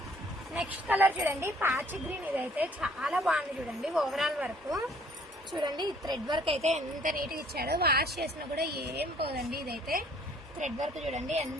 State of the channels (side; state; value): both; normal; correlation 0.59